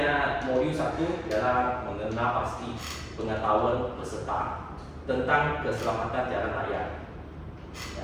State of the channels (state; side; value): identical; both; correlation 1.00